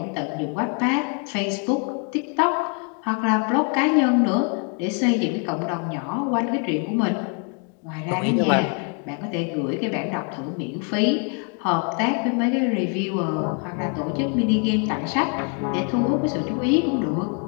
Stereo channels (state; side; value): quieter; right; 39.3 dB